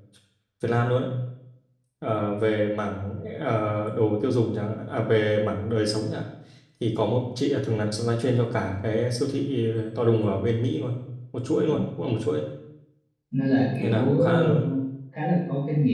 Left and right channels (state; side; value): identical; both; correlation 1.00